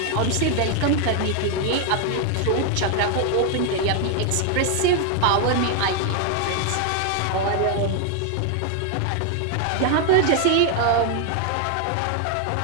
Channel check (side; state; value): both; different; correlation 0.00